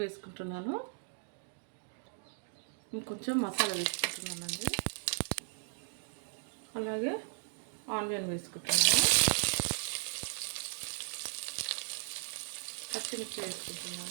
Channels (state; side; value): silent; left; digital silence